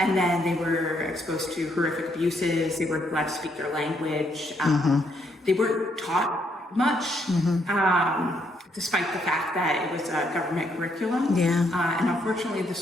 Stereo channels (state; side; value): normal; both; correlation 0.73